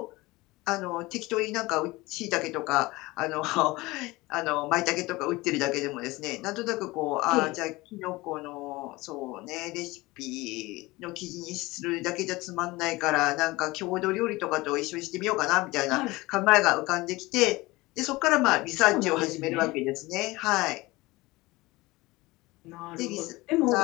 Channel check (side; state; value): right; quieter; 21.1 dB